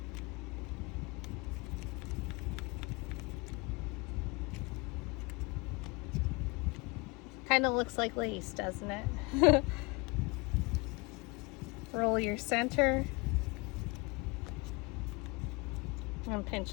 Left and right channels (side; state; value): right; quieter; 27.1 dB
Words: Kind of looks like lace, doesn't it? Roll your center and pinch